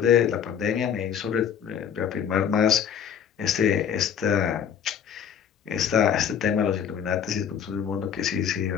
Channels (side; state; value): right; quieter; 8.2 dB